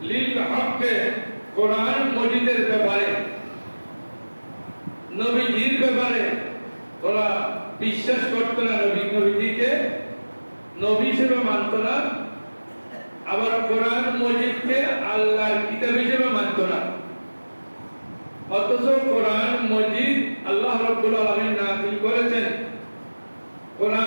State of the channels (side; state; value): both; inverted; correlation -1.00